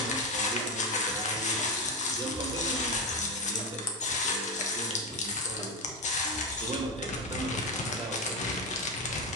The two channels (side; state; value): both; normal; correlation 0.14